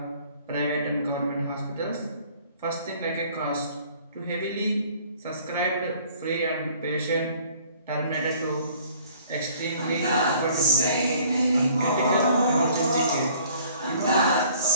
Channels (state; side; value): inverted; both; correlation -0.54